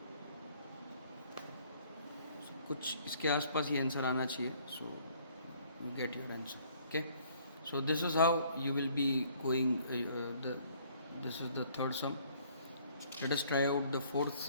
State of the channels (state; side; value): inverted; both; correlation -0.60